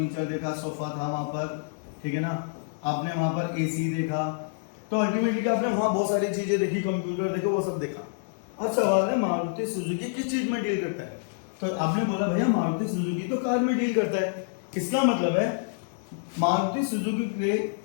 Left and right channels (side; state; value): right; silent; digital silence